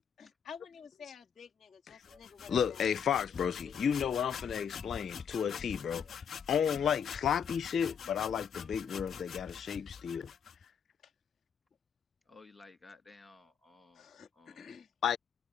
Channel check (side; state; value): right; quieter; 7.6 dB